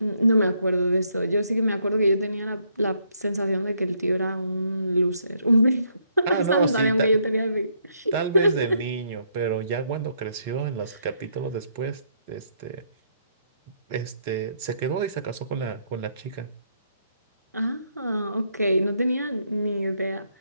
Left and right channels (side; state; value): both; inverted; correlation -0.72